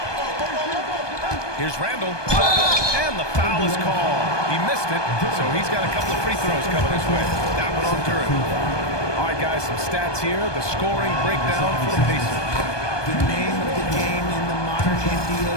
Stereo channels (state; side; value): late; right; 1.2 ms